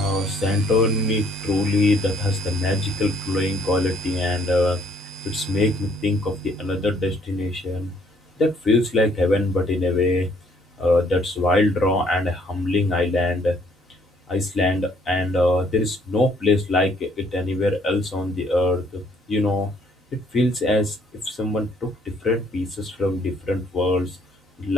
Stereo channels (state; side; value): normal; both; correlation 0.64